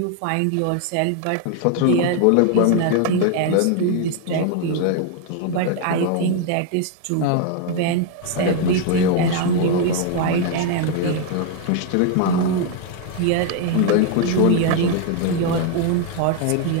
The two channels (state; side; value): different; both; correlation 0.01